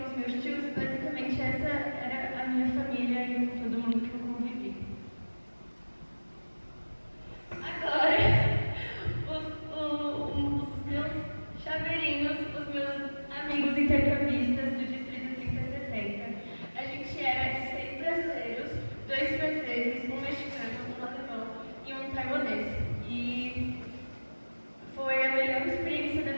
os meus tios. E basicamente essa era a minha família e todo mundo que eu convivi. Agora, os meus chaveirinhos, os meus amigos intercambistas do Distrito 3060. A gente era de 6 brasileiros, 2 franceses, um mexicano, um alemão e um taiwanês. E foi a melhor experiência da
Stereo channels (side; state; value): both; inverted; correlation -1.00